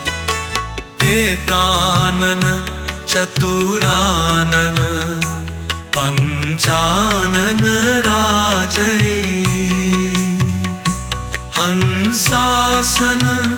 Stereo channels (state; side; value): identical; both; correlation 1.00